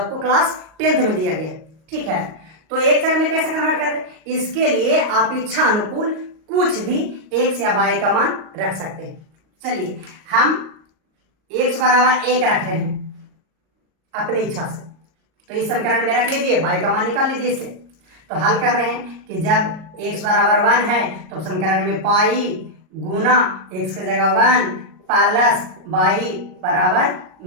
क्लास 10th में दिया गया है। ठीक है, तो एक चर में कैसे कन्वर्ट कर रहे? इसके लिए आप इच्छा अनुकूल कुछ भी x या y का मान रख सकते हैं। चलिए, हम x बराबर 1 रख रहे हैं अपनी इच्छा से, तो इस समीकरण में रख लीजिए, y का मान निकाल लीजिए इससे। तो हल कर रहे हैं कि जब x बराबर 1 है तो समीकरण में पाई गुना x के जगह 1 प्लस y बराबर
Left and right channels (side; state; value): left; late; 38 ms